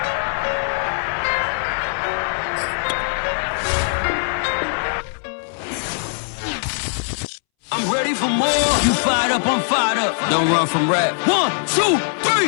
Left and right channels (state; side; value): silent; right; 65 dB below the other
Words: I'm ready for more. You fired up, I'm fired up. Don't run from rap. 1, 2,